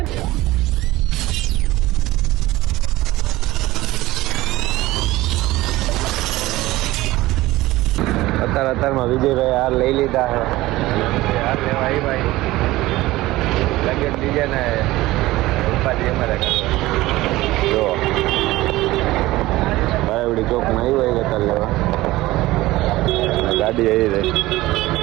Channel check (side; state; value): left; quieter; 18.0 dB